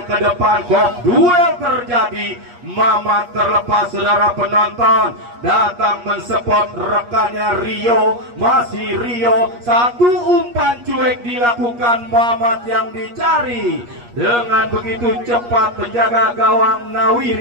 ke depan, kok duel terjadi. Mamat terlepas, saudara penonton, datang mensupport rekannya Rio. Masih Rio, satu umpan cuek dilakukan Mamat yang dicari. Dengan begitu cepat penjaga gawang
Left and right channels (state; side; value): late; left; 8.4 ms